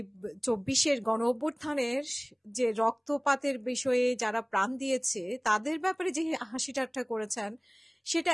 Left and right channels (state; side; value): identical; both; correlation 1.00